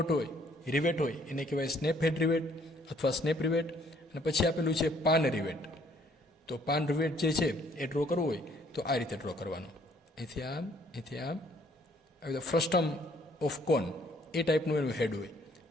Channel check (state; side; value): normal; both; correlation 0.63